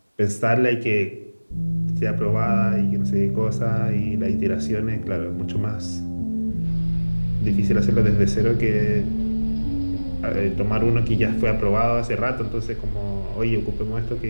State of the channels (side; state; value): both; inverted; correlation -1.00